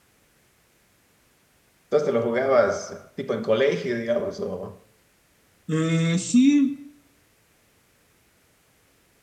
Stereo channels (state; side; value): identical; both; correlation 1.00